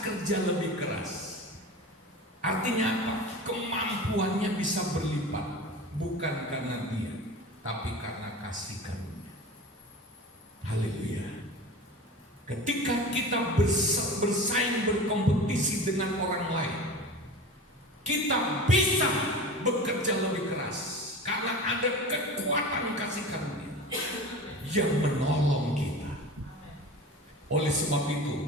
kerja lebih keras. Artinya apa? Kemampuannya bisa berlipat. Bukan karena dia, tapi karena kasih karunia. Haleluya. Ketika kita bersaing, berkompetisi dengan orang lain, kita bisa bekerja lebih keras karena ada kekuatan kasih karunia yang menolong kita. Oleh sebab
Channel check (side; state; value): both; normal; correlation 0.33